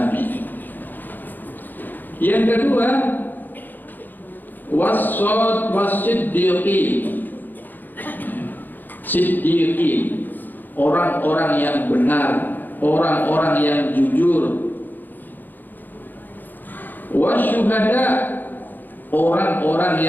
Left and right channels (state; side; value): late; right; 0.087 ms